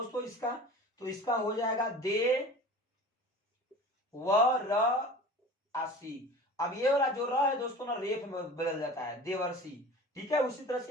इसका, तो इसका हो जाएगा दे व र आसी। अब ये वाला जो र है दोस्तों ना रेफ में बदल जाता है, देवर्षि, ठीक है। उसी तरह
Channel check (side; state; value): both; normal; correlation 0.39